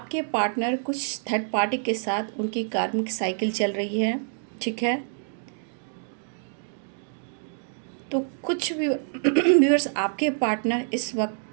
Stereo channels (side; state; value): left; silent; digital silence